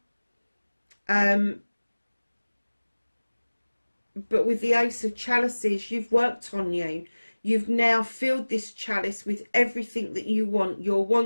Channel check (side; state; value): both; inverted; correlation -1.00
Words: but with the Ace of Chalices, you've worked on you. You've now filled this chalice with everything that you want. Your